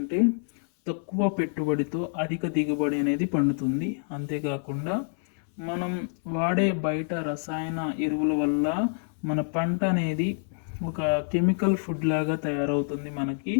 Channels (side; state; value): right; silent; 60 dB below the other